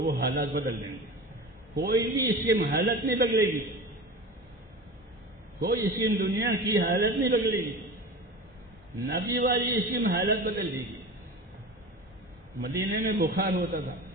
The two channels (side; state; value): both; normal; correlation 0.32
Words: وہ حالات بدل دیں گے. کوئی بھی اس کی حالت نہیں بدلے گی، کوئی اس کی دنیا کی حالت نہیں بدلے گی. نبی والی اس کی حالت بدل دے گی. مدینے میں بخار ہوتا تھا،